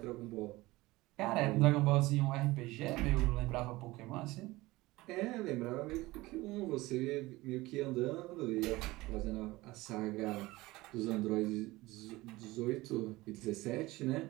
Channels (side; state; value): left; quieter; 19.8 dB